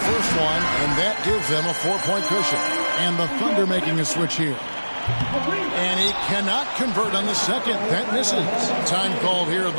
one, and that gives them a 4-point cushion. And the Thunder making a switch here. And he cannot convert on the second. That misses. Time called here.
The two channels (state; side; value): inverted; both; correlation -1.00